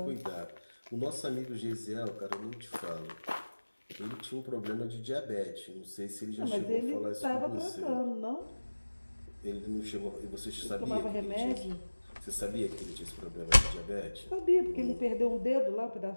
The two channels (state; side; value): inverted; both; correlation -1.00